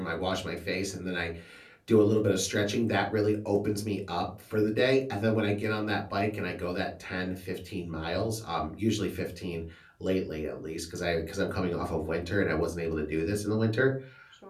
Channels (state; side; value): identical; both; correlation 1.00